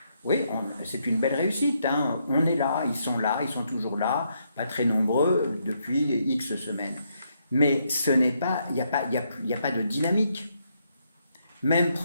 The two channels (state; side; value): inverted; both; correlation -0.76